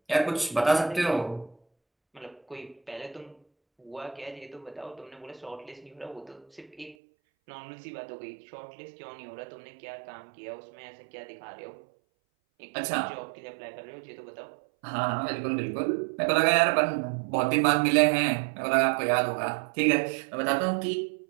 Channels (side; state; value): left; drops out; at 7.0 s